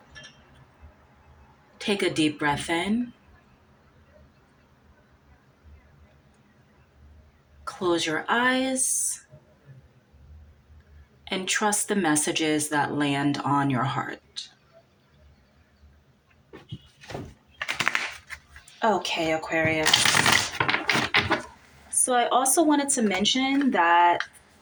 Take a deep breath in. Close your eyes and trust the messages that land on your heart. Okay, Aquarius. So I also wanted to mention that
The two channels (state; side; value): identical; both; correlation 1.00